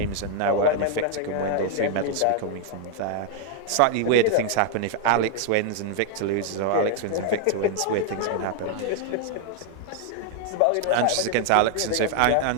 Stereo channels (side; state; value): both; different; correlation 0.00